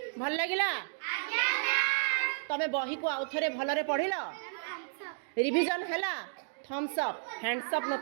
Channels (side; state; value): left; silent; digital silence